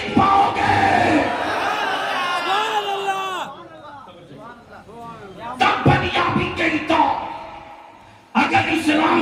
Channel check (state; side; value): identical; both; correlation 1.00